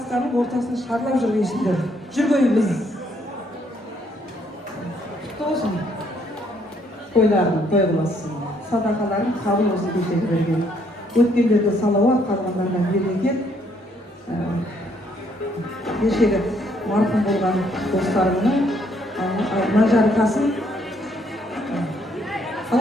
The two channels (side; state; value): both; normal; correlation 0.69